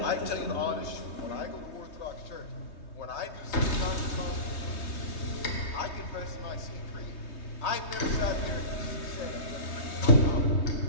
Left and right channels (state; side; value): late; right; 3.2 ms